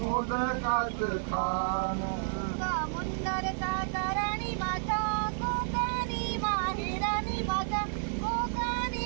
खाणं समुंदर सातारानी माझा कोकणी माहेरानी माझा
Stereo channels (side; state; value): left; silent; digital silence